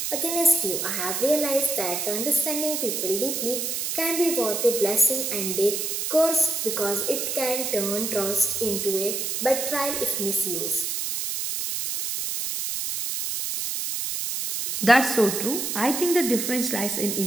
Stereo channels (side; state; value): right; noise; hiss, 2 dB below the sound